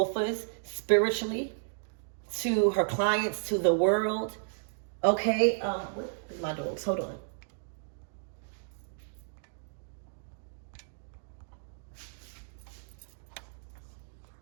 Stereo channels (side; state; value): left; silent; digital silence